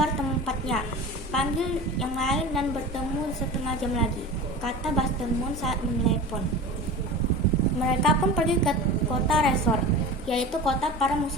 tempatnya, panggil yang lain dan bertemu setengah jam lagi, kata Buster Moon saat menelepon. Mereka pun pergi ke kota Resort, yaitu kota para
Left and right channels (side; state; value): both; normal; correlation 0.34